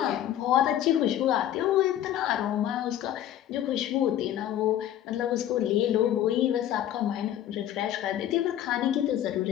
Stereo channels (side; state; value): right; quieter; 11.7 dB